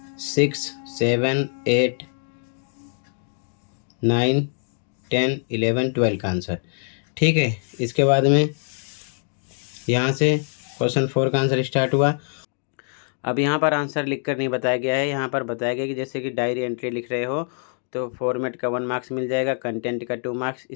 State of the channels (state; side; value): silent; right; 55 dB below the other